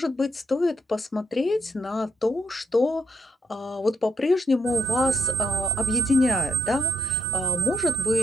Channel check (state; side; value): normal; both; correlation 0.75